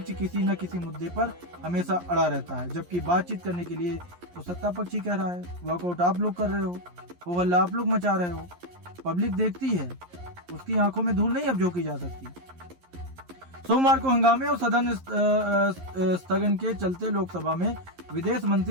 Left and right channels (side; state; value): left; late; 11 ms